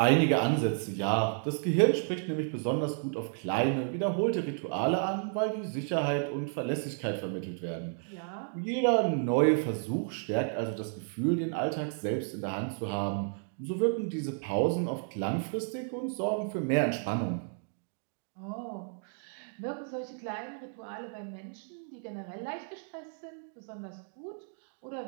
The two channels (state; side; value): silent; left; 56 dB below the other